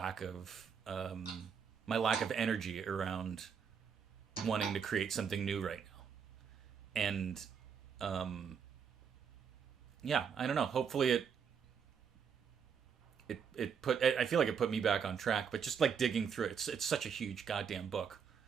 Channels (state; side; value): quieter; left; 6.9 dB